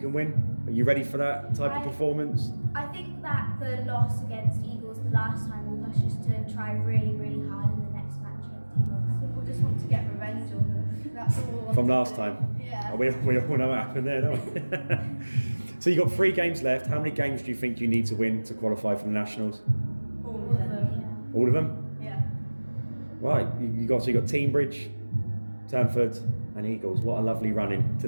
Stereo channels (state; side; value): inverted; both; correlation -1.00